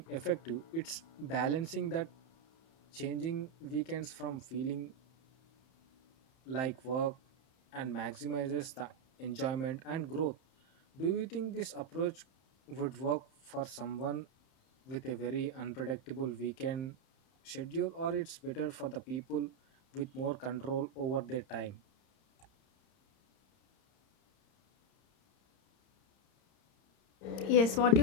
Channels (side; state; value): right; late; 30 ms